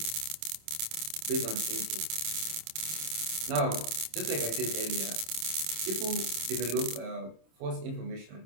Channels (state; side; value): late; left; 27 ms